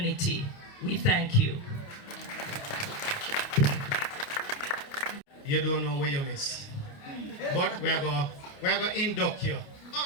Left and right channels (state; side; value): late; right; 29 ms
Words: We thank you. You don't know where you miss. But we're going to induct you. Oh,